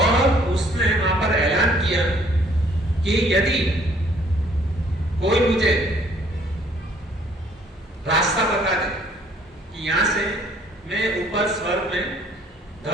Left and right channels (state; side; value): normal; both; correlation 0.61